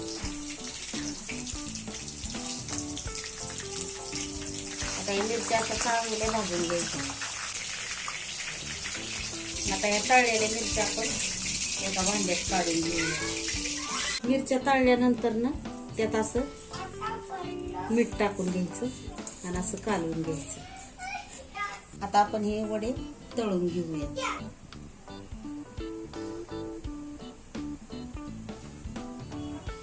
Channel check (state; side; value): identical; both; correlation 1.00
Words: आता या मिरच्या असं चांगल्या भाजून घ्यायच्या. आता या तळलेल्या मिरच्या आपण एका भांड्यात काढून घेऊया. मिरच्या तळल्यानंतर ना त्यात असं मीठ टाकून घ्यायचं आणि असं कालवून घ्यायचं. आता आपण हे वडे तळून घेऊया.